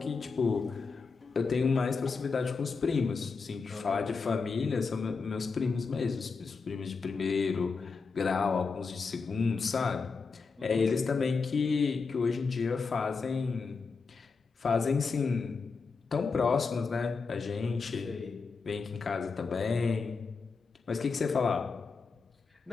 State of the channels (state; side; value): quieter; right; 4.8 dB